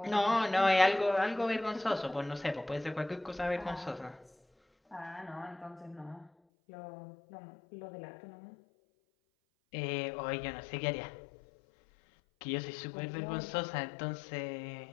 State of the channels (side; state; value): right; drops out; at 6.3 s